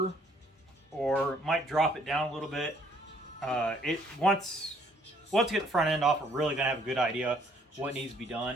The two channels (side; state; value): both; normal; correlation 0.64